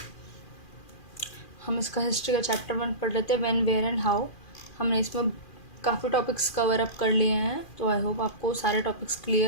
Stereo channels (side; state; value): right; late; 2.4 ms